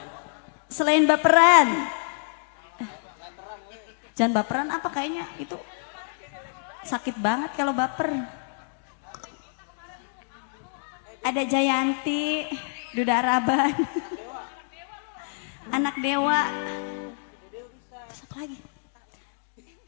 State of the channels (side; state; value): right; silent; digital silence